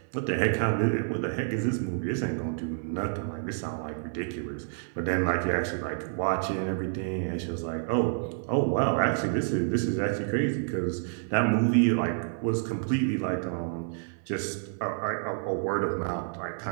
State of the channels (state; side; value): silent; left; 58 dB below the other